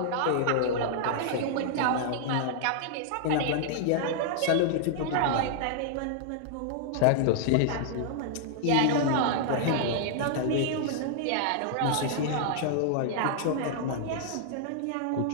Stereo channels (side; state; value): both; different; correlation -0.01